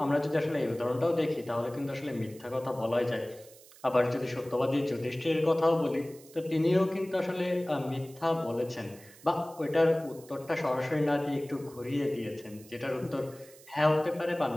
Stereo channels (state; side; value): noise; right; hiss, 22 dB below the sound